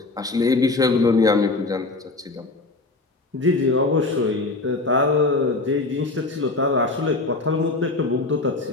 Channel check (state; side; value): quieter; right; 3.3 dB